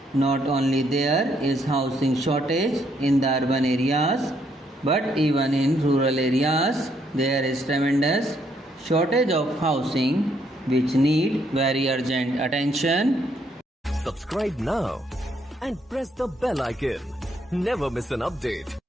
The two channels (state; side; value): normal; both; correlation 0.72